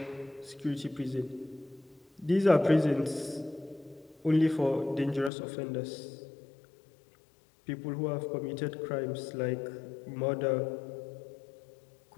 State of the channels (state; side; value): drops out; right; at 5.3 s